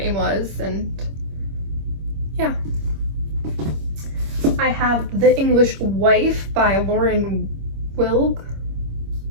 was, and yeah. I have The English Wife by Lauren Wilg.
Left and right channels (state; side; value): late; left; 26 ms